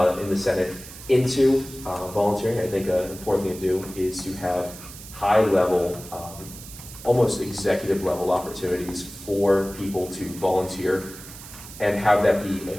in the Senate into volunteering. I think an important thing to do is to have high-level, almost executive-level opportunities for people to volunteer and have that be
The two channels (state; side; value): noise; right; hiss, 15 dB below the sound